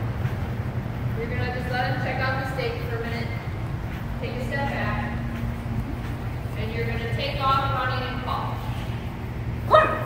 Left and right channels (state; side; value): identical; both; correlation 1.00